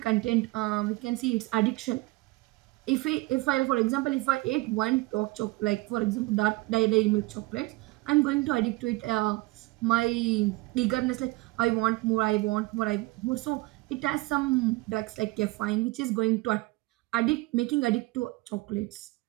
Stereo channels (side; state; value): left; quieter; 22.3 dB